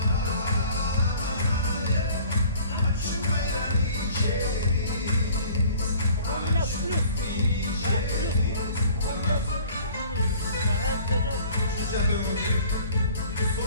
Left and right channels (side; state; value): both; inverted; correlation -0.50